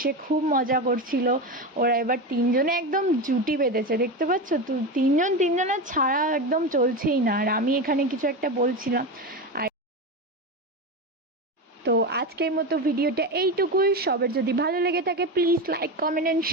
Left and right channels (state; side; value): normal; both; correlation 0.19